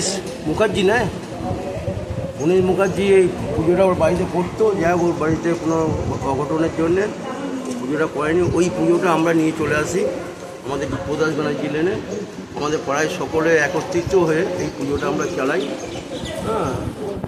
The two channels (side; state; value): both; identical; correlation 1.00